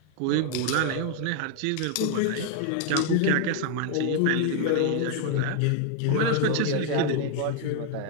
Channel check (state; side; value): different; both; correlation 0.00